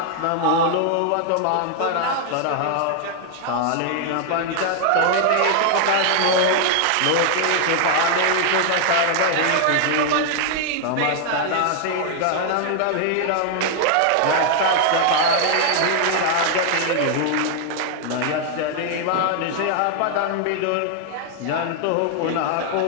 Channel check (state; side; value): different; both; correlation 0.00